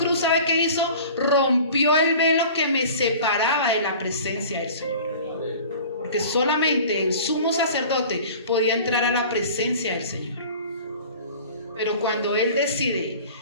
¿sabe qué hizo? Rompió el velo que me separaba de la presencia del Señor. Porque solamente el sumo sacerdote podía entrar a la presencia del Señor. Pero cuando Él decide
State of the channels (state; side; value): inverted; both; correlation -0.43